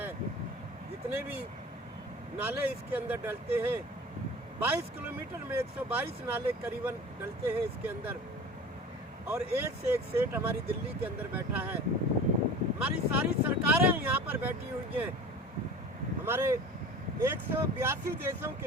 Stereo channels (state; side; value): normal; both; correlation 0.38